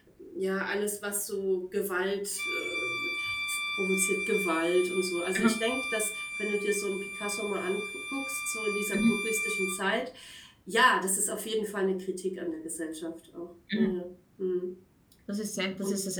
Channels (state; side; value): identical; both; correlation 1.00